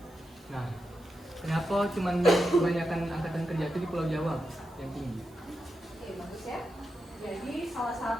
Nah, kenapa cuman kebanyakan angkatan kerja itu di Pulau Jawa yang tinggi? Oke, bagus ya. Jadi salah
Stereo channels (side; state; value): right; noise; hiss, 28 dB below the sound